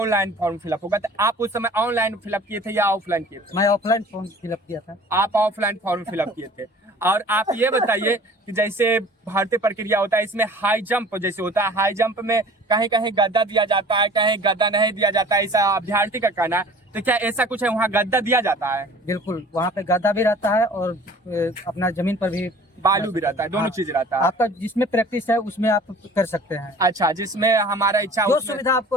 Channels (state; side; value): normal; both; correlation 0.47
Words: फॉर्म फिलअप होगा, तो आप उस समय ऑनलाइन फिलअप किए थे या ऑफलाइन किए थे? मैं ऑफलाइन फॉर्म फिलअप किया था। आप ऑफलाइन फॉर्म फिलअप किए थे। और आप ये बताइए कि जैसे भर्ती प्रक्रिया होता है इसमें हाई जंप जैसे होता है, हाई जंप में कहीं कहीं गद्दा दिया जाता है, कहीं गद्दा नहीं दिया जाता है, ऐसा अभ्यर्थी का कहना है। तो क्या ऐसा कुछ है वहाँ गद्दा दिया जाता है? बिल्कुल, वहाँ पे गद्दा भी रहता है और अपना जमीन पर भी बालू भी रहता है, दोनों चीज रहता है। आपका जिसमें प्रैक्टिस है उसमें आप कर सकते हैं। अच्छा, जिसमें हमारा इच्छा जो सुविधा